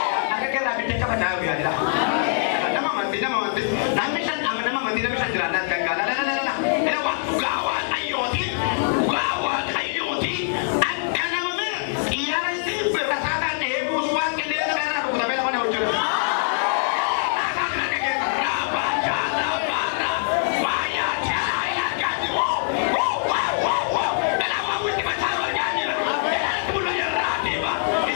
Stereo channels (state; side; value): silent; right; 58 dB below the other